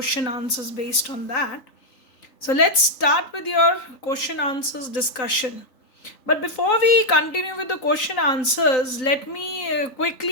answers based on that. So, let's start with your question answers discussion. But before we continue with the question answers, let me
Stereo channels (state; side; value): late; right; 3.9 ms